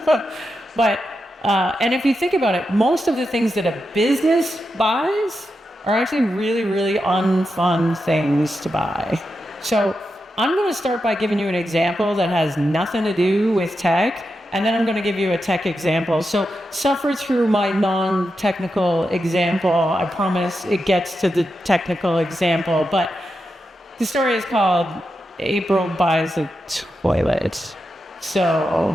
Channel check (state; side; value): normal; both; correlation 0.88